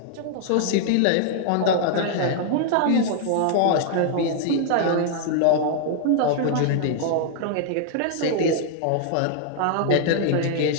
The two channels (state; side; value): different; both; correlation -0.01